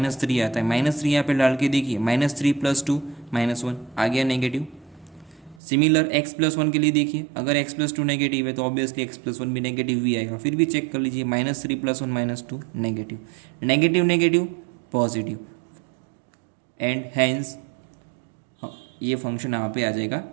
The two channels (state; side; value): drops out; left; at 5.6 s